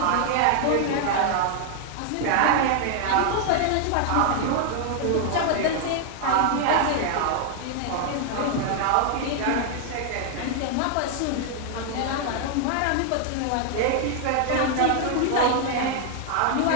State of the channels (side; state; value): both; different; correlation 0.00